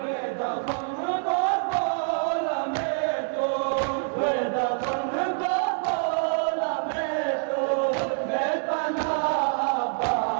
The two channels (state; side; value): silent; left; 61 dB below the other